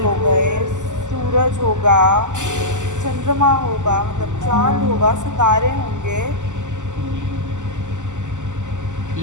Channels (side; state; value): left; late; 0.85 ms